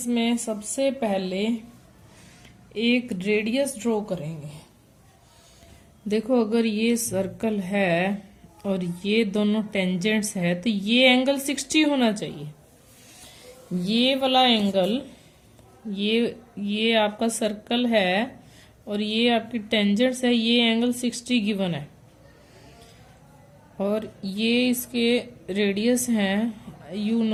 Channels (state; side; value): identical; both; correlation 1.00